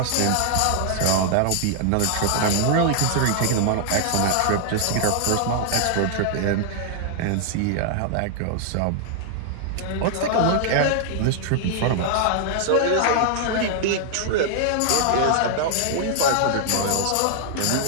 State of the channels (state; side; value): different; both; correlation 0.00